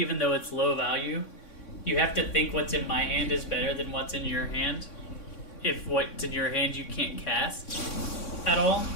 though it's low value. You have to think what's in my hand is better than what's in your hand. If what's in your hand you can't cast at all.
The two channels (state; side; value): late; right; 3.6 ms